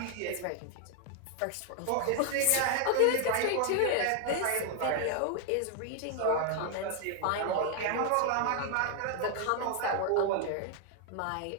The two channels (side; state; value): both; different; correlation 0.00